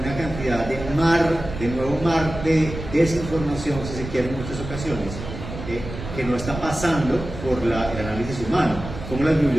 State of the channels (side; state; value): right; noise; rumble, 9 dB below the sound